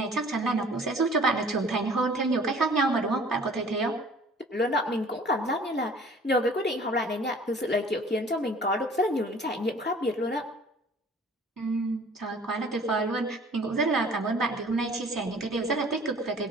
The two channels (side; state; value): both; normal; correlation 0.50